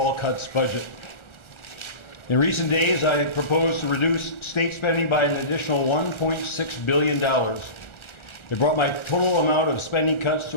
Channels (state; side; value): late; right; 1.4 ms